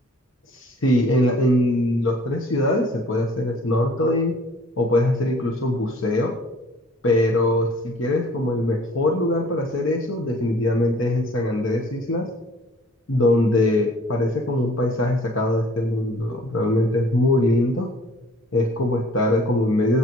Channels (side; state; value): both; normal; correlation 0.53